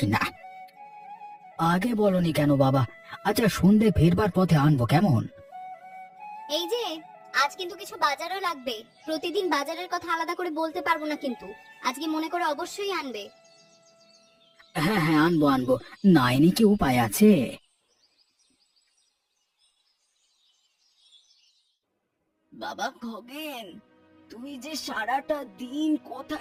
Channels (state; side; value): identical; both; correlation 1.00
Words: না। আগে বলনি কেন বাবা? আচ্ছা, সন্ধে ফেরবার পথে আনবো কেমন? এই যে, আজ কিন্তু কিছু বাজারও লাগবে। প্রতিদিন বাজারের কথা আলাদা করে বলতে পারবো না, কিন্তু আজকে মনে করে অবশ্যই আনবে। হ্যাঁ হ্যাঁ, আনবো আনবো, নাইনি কি উপায় আছে? বাবা খগেন, তুই যে সারাটা দিন